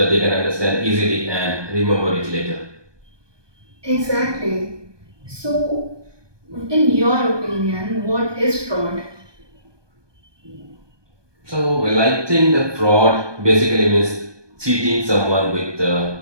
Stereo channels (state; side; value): late; left; 1.2 ms